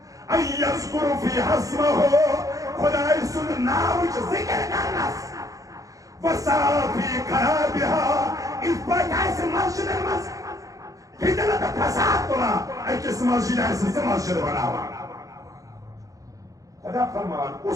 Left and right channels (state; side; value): late; left; 0.17 ms